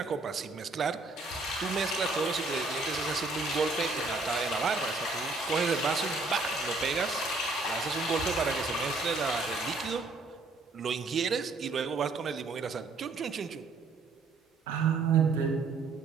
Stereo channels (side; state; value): left; quieter; 3.6 dB